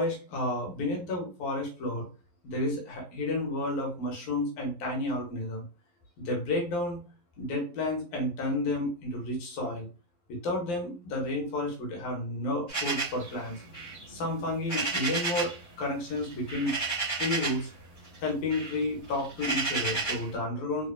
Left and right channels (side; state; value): right; late; 11 ms